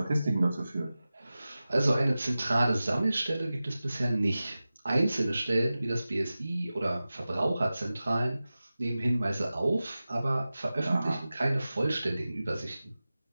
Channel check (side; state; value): both; inverted; correlation -0.95